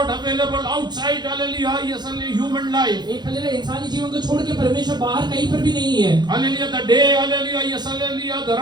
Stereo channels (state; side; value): late; left; 0.21 ms